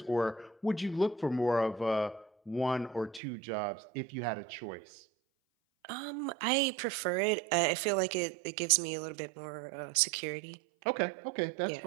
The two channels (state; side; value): drops out; left; at 3.2 s